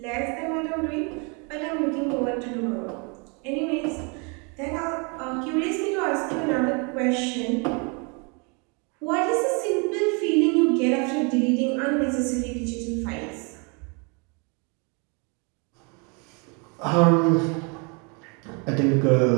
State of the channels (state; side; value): quieter; left; 33.3 dB